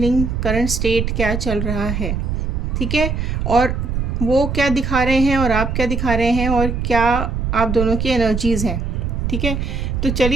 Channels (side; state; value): right; noise; rumble, 2 dB below the sound